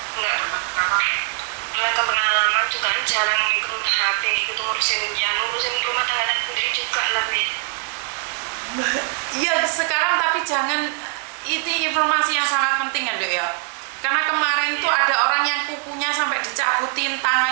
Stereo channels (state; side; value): quieter; left; 39.0 dB